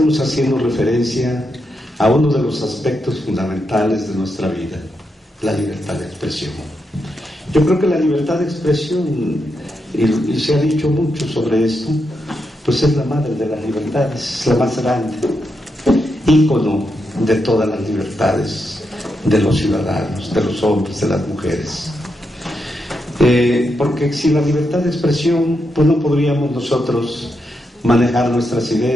haciendo referencia a uno de los aspectos fundamentales de nuestra vida, la libertad de expresión. Yo creo que la libertad de expresión, y se ha dicho mucho sobre esto, pues es la madre de las libertades, es la más grande, ícono de todas las libertades de los ciudadanos, de los hombres, de las mujeres. Porque sin la libertad de expresión, pues no podríamos nosotros manejar nuestras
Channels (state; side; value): normal; both; correlation 0.84